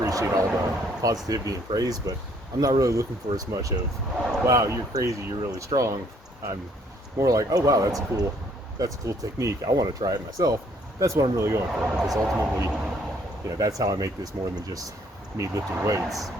all the positivity and praise, but I'm not really looking for as much of, wow, you're crazy, you're really strong. I'm more like, oh, wow, that's a cool technique. I want to try it myself. That's what I'm really going for, because ultimately, that's how I make this more than just me lifting weights.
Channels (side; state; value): both; normal; correlation 0.64